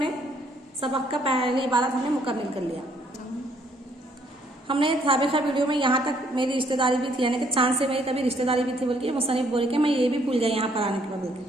सबक का पहली इबारत हमने मुकम्मल कर लिया। हमने साबिक़ा वीडियो में यहाँ तक मेरी रिश्तेदारी भी थी, यानी कि चांद से मेरी कभी रिश्तेदारी भी थी बोल के मुसन्निफ बोल के मैं ये भी भूल गई यहाँ पर आने के बाद बोल के।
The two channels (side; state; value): both; normal; correlation 0.66